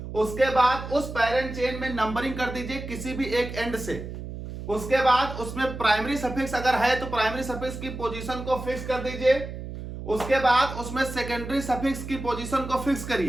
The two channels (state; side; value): noise; right; hum, 9 dB below the sound